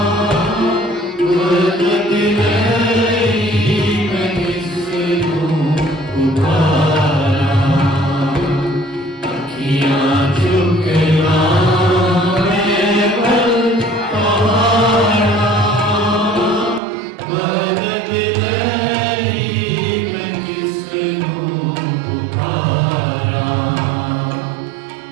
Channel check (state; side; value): drops out; left; at 16.8 s